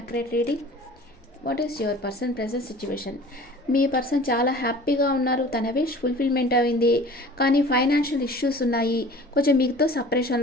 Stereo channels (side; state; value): both; normal; correlation 0.44